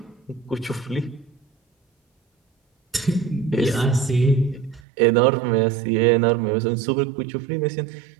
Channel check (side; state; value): left; drops out; at 4.8 s